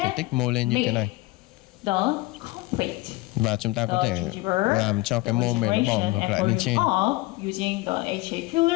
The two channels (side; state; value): right; quieter; 21.2 dB